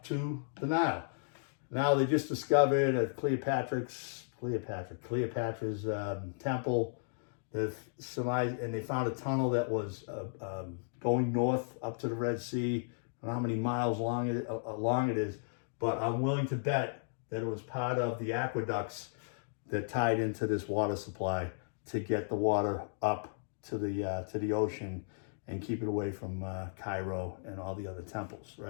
to the Nile. Now they just discovered at Cleopatra's temple. And they found a tunnel that was going north up to the Red Sea. I don't know how many miles long it is, but I'm willing to bet that it was part of the aqueducts that tied into this water supply to get the water up to the ocean and keep it away from Cairo and all the other temples,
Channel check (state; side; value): silent; right; digital silence